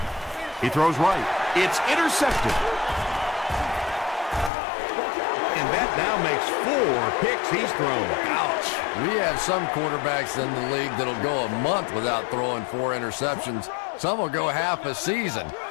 He throws right. It's intercepted. And that now makes 4 picks he's thrown. Ouch. We have some quarterbacks in the league that'll go a month without throwing 4 interceptions. Some will go half a season.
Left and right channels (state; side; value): drops out; right; at 4.5 s